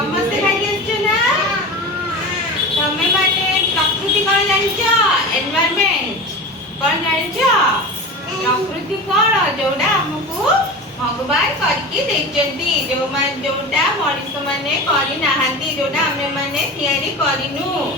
ଖାଇକି ଆସିଛ ନା? ତମେ ମାନେ ପ୍ରକୃତି କଣ ଜାଣିଛ? ଏନଭାୟରମେଣ୍ଟ କଣ ଜାଣିଛ? ପ୍ରକୃତି କଣ? ଯୋଉଟା ଆମକୁ ଭଗବାନ କରିକି ଦେଇଛନ୍ତି, ଯୋଉଟା ମଣିଷ ମାନେ କରିନାହାନ୍ତି, ଯୋଉଟା ଆମେ ମାନେ ତିଆରି କରିନୁ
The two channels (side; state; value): both; normal; correlation 0.30